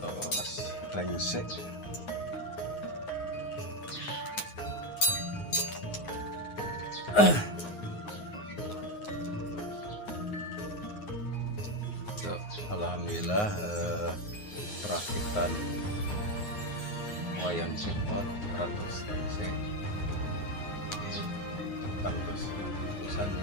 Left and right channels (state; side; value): late; right; 9.6 ms